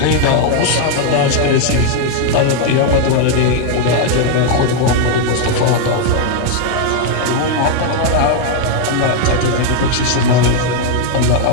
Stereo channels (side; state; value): both; different; correlation 0.00